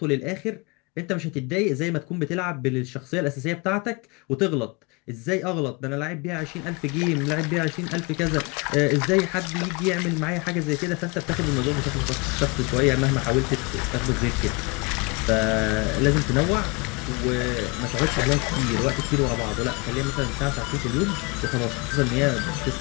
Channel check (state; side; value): quieter; right; 27.9 dB